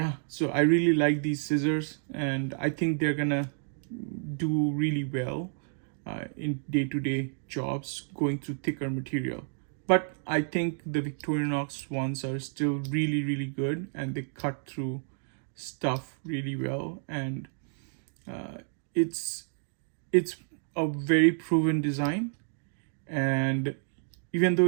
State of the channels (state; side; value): silent; left; 58 dB below the other